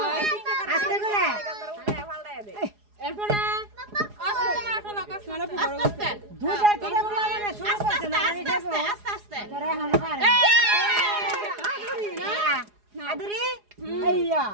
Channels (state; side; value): late; left; 4.8 ms